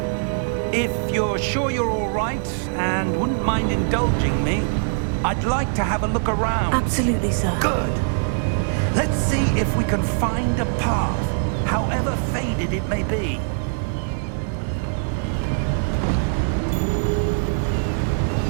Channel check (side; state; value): left; silent; digital silence